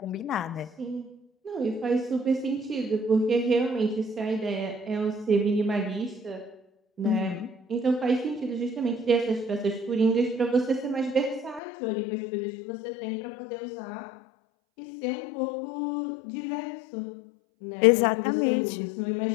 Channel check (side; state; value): right; drops out; at 11.6 s